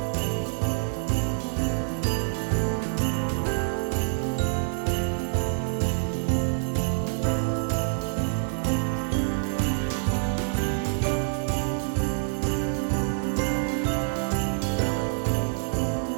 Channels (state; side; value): silent; left; 60 dB below the other